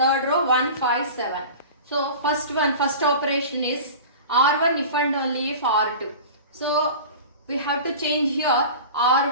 row 1, 5, 7. So first operation is R1 if and only if R2. So we have to change here.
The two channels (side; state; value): both; inverted; correlation -0.35